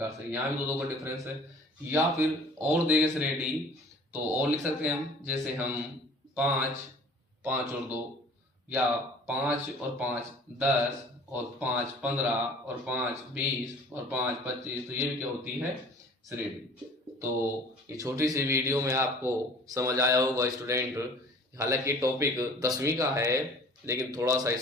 से, यहाँ भी 2 का डिफरेंस है। या फिर और देखें श्रेणी तो और लिख सकते हैं हम, जैसे हम 5, 5 और 2, या 5 और 5 10 और 5 15 और 5 20 और 5 25, तो ये भी क्या होती है, श्रेणी। तो ये छोटी सी वीडियो में आपको समझ आया होगा स्टूडेंट। हालांकि टॉपिक 10वीं का है, लेकिन थोड़ा सा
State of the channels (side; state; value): both; normal; correlation 0.48